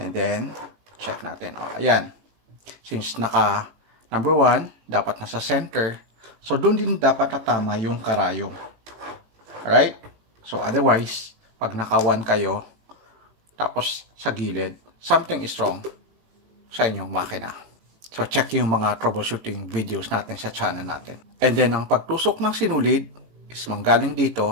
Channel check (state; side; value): late; left; 18 ms